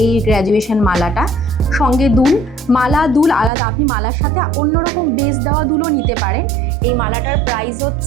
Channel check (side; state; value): left; drops out; at 3.5 s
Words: এই গ্র্যাজুয়েশন মালাটা। সঙ্গে দুল, মালা দুল আলাদা, আপনি মালার সাথে অন্যরকম বেস দেওয়া দুলও নিতে পারেন। এই মালাটার প্রাইস